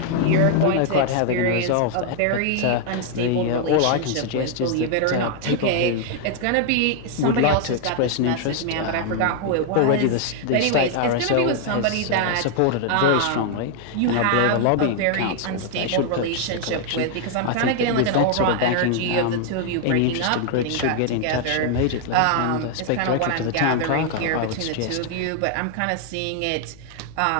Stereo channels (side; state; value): both; different; correlation 0.00